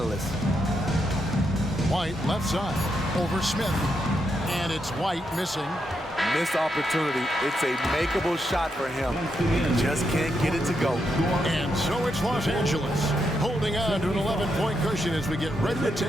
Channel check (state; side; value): normal; both; correlation 0.82